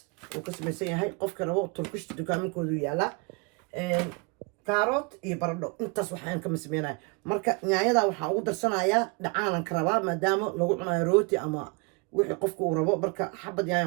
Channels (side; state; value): left; quieter; 30.8 dB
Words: uu ka samaysan yahay qofka rabo turkish dukaaminkoodu yaala kaarot iyo baradho intaas waxaan ka sameeyay marka nyaayada waxaan ugu darsanayaa dhacaanan ka rabaa maadaama lagu cunayo rooti ama wixii qofku uu rabo marka xabad